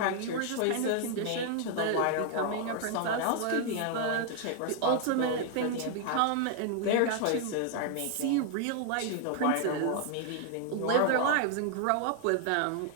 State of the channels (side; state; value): both; different; correlation 0.00